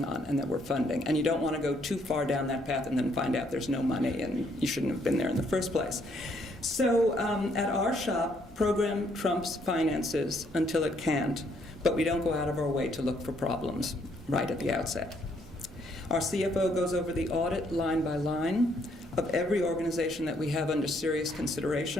on and that we're funding. And you don't want to go too far down that path and then find out there's no money and you shouldn't have been there in the first place. So at our shop, program trumps finances until it can't, but we don't go out of our way to look for problems right at the outset. Our CFO goes over the audit line by line. of every organization that we have under serious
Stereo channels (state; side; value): normal; both; correlation 0.69